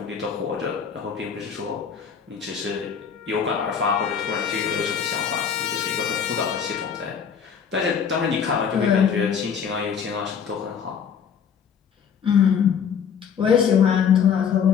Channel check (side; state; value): right; quieter; 7.2 dB